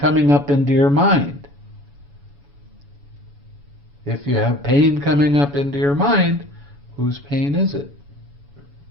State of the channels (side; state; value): left; late; 7.1 ms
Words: up into your mind. If you have pain coming up into your mind, whose pain is it?